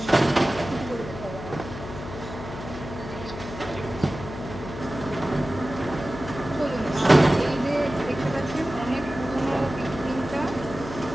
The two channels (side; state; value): left; noise; hum, 11 dB below the sound